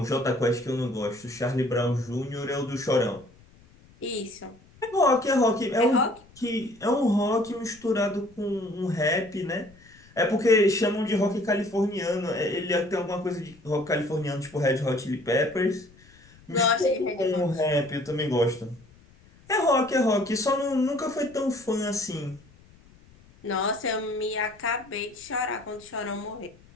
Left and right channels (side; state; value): left; noise; rumble, 27 dB below the sound